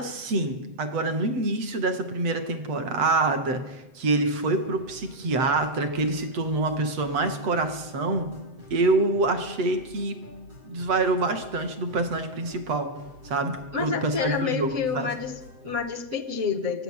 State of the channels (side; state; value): left; late; 7.8 ms